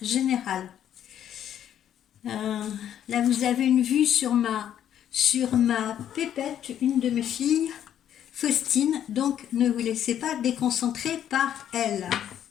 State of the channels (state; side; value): quieter; right; 10.3 dB